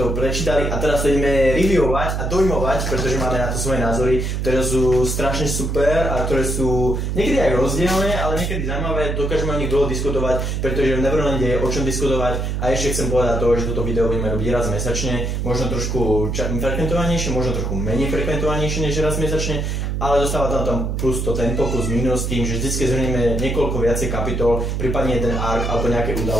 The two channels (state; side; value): noise; right; hum, 1 dB below the sound